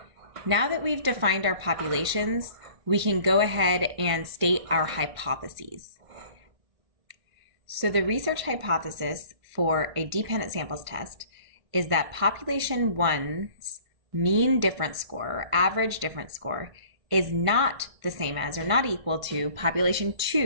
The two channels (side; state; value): left; late; 1.5 ms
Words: Now that we've defined our populations, we can go ahead and state our hypotheses. So the research hypothesis for a dependent samples test is that population 1's mean difference score, or average difference score, is not the same as or not equal to population